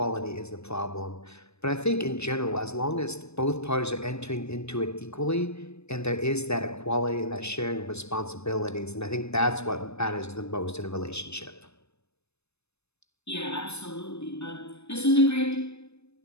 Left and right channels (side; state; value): right; late; 0.80 ms